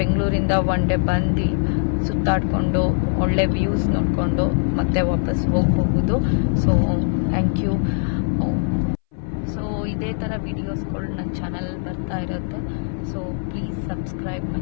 ಒನ್ ಡೇ ಬಂದು ಸುತ್ತಾಡಿಕೊಂಡು ಒಳ್ಳೆ ವ್ಯೂಸ್ ನೋಡಿಕೊಂಡು ಮತ್ತೆ ವಾಪಸ್ ಹೋಗಬಹುದು. So thank you. ಸೊ ಇದೇ ಥರ ವಿಡಿಯೋಸ್ಗಳು ನನ್ನ ಚಾನಲ್ ಬರ್ತಾ ಇರುತ್ತೆ. So please subscribe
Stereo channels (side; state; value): right; silent; 62 dB below the other